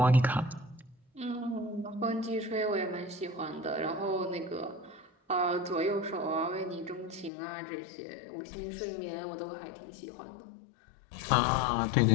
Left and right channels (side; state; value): right; drops out; at 7.3 s